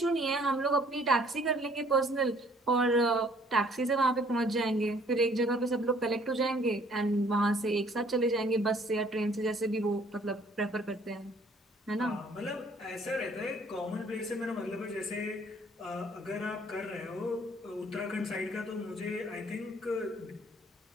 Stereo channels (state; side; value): normal; both; correlation 0.59